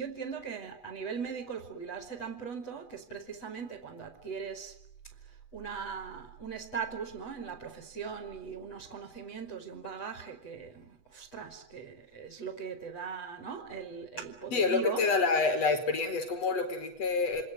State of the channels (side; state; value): right; late; 8.1 ms